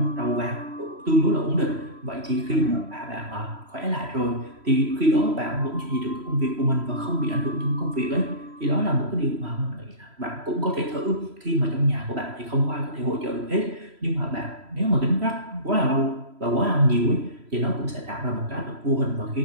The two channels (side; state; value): left; late; 3.0 ms